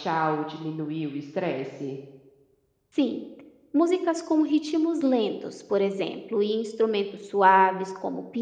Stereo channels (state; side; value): identical; both; correlation 1.00